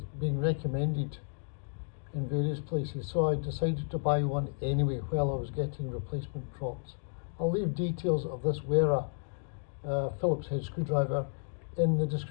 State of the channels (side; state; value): right; silent; digital silence